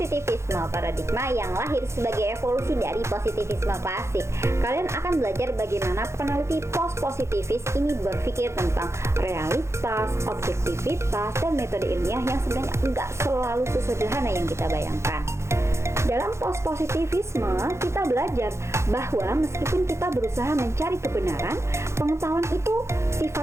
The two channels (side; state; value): left; late; 0.13 ms